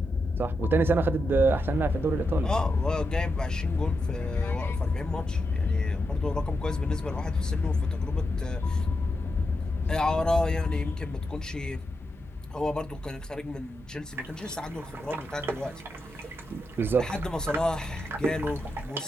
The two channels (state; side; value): normal; both; correlation 0.85